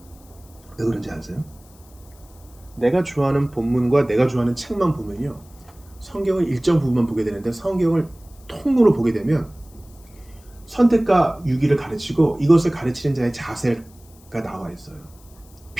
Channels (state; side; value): noise; left; hiss, 27 dB below the sound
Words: 왜 그런지 아세요? 내가 좋아하는 본문과 내가 좋아하는 책만 보면요, 성경을 일정 부분만 보게 되는데 성경을 통으로 보게 되면 선택과 유기를 가르치고 이것을 가르치는 자의 자세가 나와 있어요.